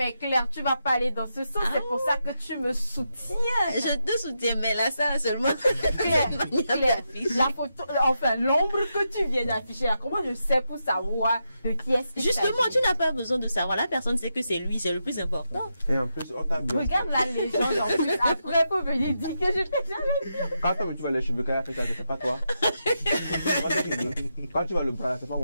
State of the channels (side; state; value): both; inverted; correlation -0.85